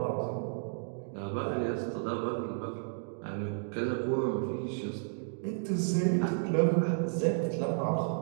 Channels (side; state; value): left; silent; digital silence